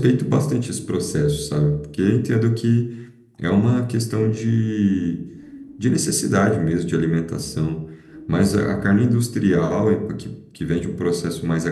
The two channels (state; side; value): identical; both; correlation 1.00